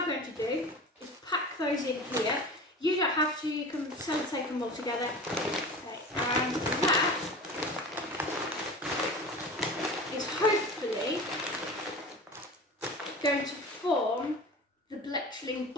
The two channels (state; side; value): normal; both; correlation 0.35